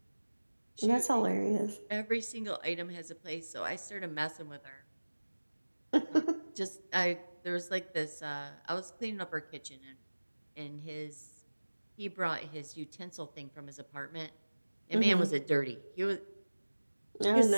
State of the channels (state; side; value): inverted; both; correlation -1.00